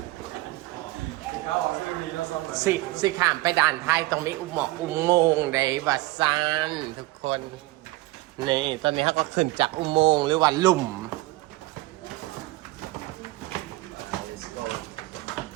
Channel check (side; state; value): left; quieter; 19.5 dB